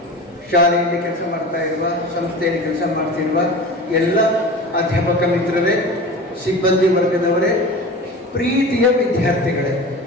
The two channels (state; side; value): normal; both; correlation 0.34